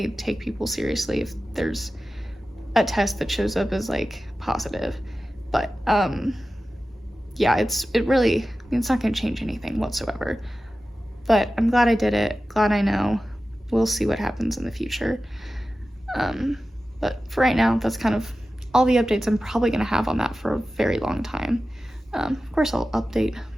take people seriously if there's a test that shows up as like positive. But yeah, it's not gonna change anything whatsoever. But I'm glad I did it, glad I know. We'll see what happens in the future. But for right now, that's kind of all the updates I'm probably gonna have on that for a very long time. Of course, I'll update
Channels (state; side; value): normal; both; correlation 0.94